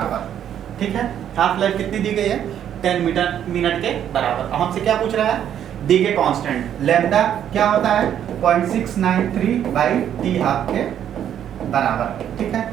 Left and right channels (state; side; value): quieter; left; 9.9 dB